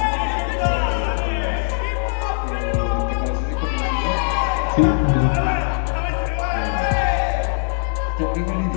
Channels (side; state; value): right; silent; 60 dB below the other